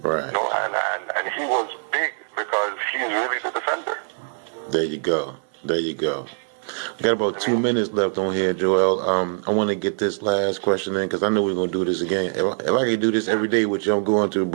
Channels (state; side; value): silent; left; 61 dB below the other